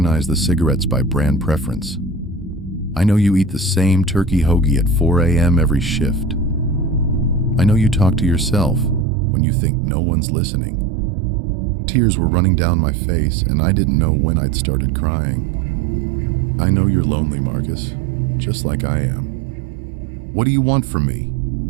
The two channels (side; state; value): left; drops out; at 9.1 s